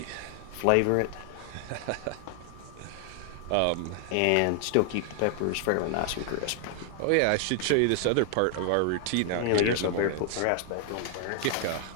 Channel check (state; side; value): different; both; correlation 0.00